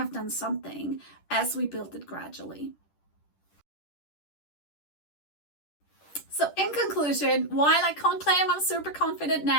done something, as we build it gradually. So in conclusion, while I can't claim I'm super confident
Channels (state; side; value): late; right; 10 ms